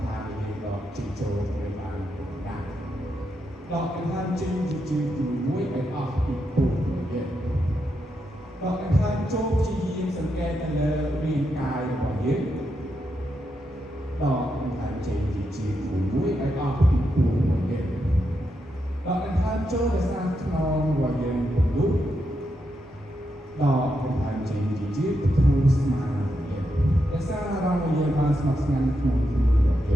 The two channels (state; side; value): normal; both; correlation 0.84